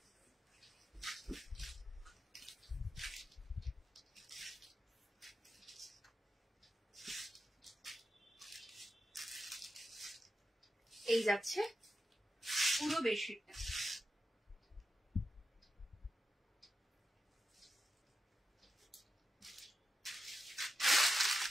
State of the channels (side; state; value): both; normal; correlation 0.90